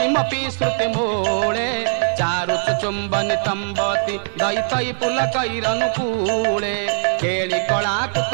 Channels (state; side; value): silent; left; 65 dB below the other